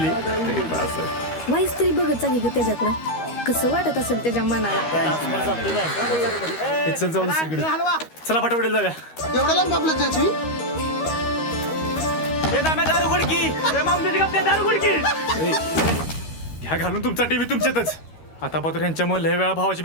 तरी बास आहे. वाईस तरी बघत चांगली ग त्याच्याकडं. कसं वाटत असेल त्याच्या मनाला. चल जाऊ दुसरीकडे. चला पटापट जागा. एवढं लांब आपलं त्याची घ्या घालून तुमचा टीव्ही तुमच्यातच. आता पात्र यांच्यामुळे लय वेळा भावाची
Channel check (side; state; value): right; late; 13 ms